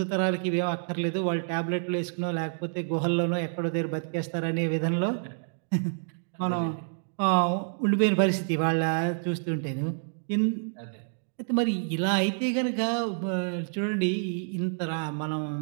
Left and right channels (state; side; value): silent; left; digital silence